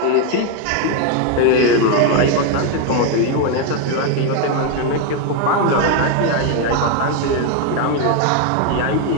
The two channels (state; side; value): different; both; correlation 0.01